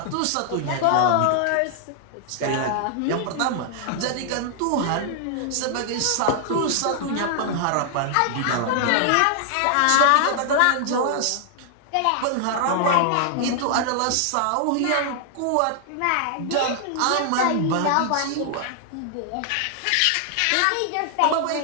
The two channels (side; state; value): both; different; correlation 0.00